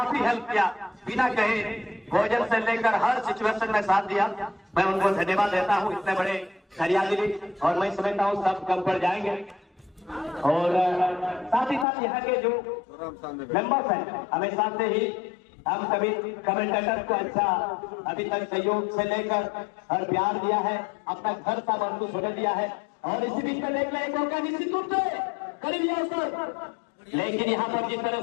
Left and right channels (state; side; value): drops out; right; at 11.9 s